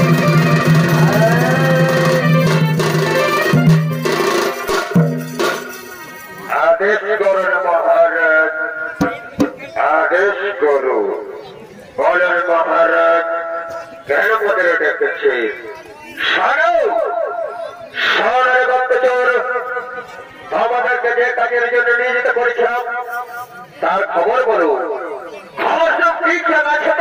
আদেশ করুন মহারাজ আদেশ করু বলেন মহারাজ কেন পদের ডেকেছে আমাদেরকে যে কাজের জন্য নিয়োজিত করেছিলাম তার খবর বলুন খবর সব ঠিকঠাক আছে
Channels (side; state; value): both; identical; correlation 1.00